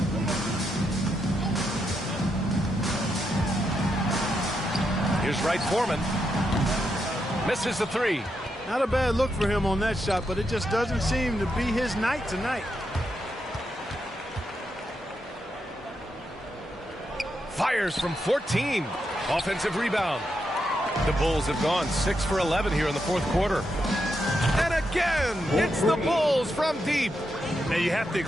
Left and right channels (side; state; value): both; normal; correlation 0.83